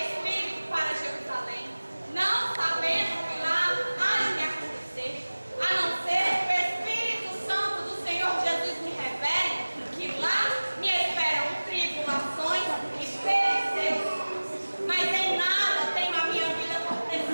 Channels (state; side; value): inverted; both; correlation -1.00